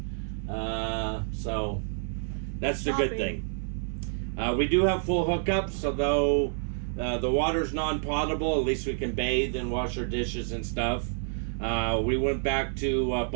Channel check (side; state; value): left; silent; 59 dB below the other